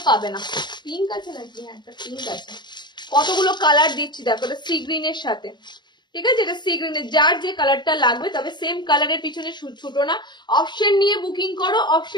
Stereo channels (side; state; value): right; late; 0.21 ms